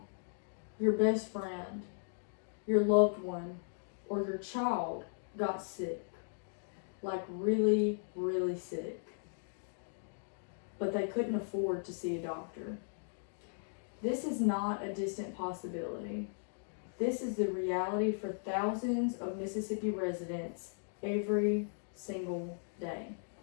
your best friend, your loved one, or your child got sick, like really, really sick, but they couldn't afford to see a doctor. This is not a distant possibility. This is the reality for thousands of Mississippi residents every single day.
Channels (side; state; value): right; silent; digital silence